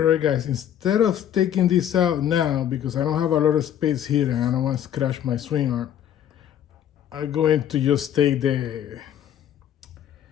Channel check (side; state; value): right; quieter; 10.2 dB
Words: right, guys, instead of taking this out now, because I don't have a lot of space here and I don't want to scratch my swing arm, I'm going to just take